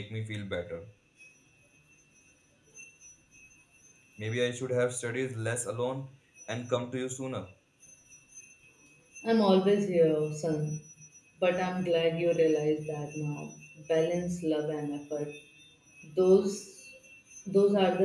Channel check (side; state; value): both; identical; correlation 1.00